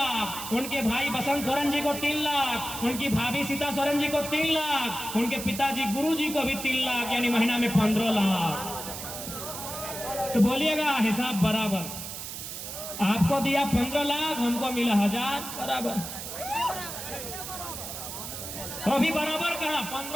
उनके भाई बसंत सोरेन जी को 3 लाख, उनकी भाभी सीता सोरेन जी को 3 लाख, उनके पिताजी गुरु जी को भी 3 लाख, यानी महीना में 15 लाख। तो बोलिएगा हिसाब बराबर, आपको दिया 15 लाख, हमको मिला 1000, बराबर। तो भी बराबर कहा,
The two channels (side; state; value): right; noise; hiss, 8 dB below the sound